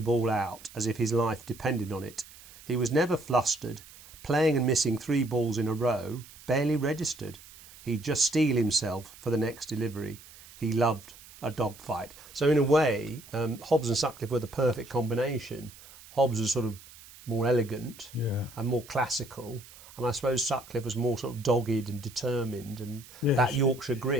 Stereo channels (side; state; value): right; noise; hiss, 20 dB below the sound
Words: ball out, as if his life depended on it. He was never flustered, playing and missing 3 balls in a row, barely registered. He'd just steel himself for the next delivery. He loved a dogfight. So in a way, Hobbs and Sutcliffe were the perfect combination. Hobbs was sort of more elegant and more classical, and I suppose Sutcliffe was more sort of dogged and determined, and that Yorkshire